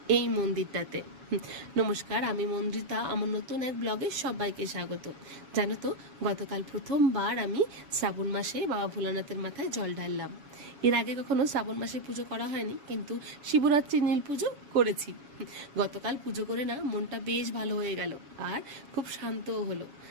এই মন্দিরটাতে। নমস্কার, আমি মন্দিতা। আমার নতুন এক ব্লগে সবাইকে স্বাগত। জানো তো, গতকাল প্রথমবার আমি শ্রাবণ মাসে বাবা ভোলানাথের মাথায় জল ঢাললাম। এর আগে কখনো শ্রাবণ মাসে পুজো করা হয়নি, কিন্তু শিবরাত্রি নীল পুজো করেছি। গতকাল পুজো করে না মনটা বেশ ভালো হয়ে গেল, আর খুব শান্তও হলো।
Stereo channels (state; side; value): late; left; 7.2 ms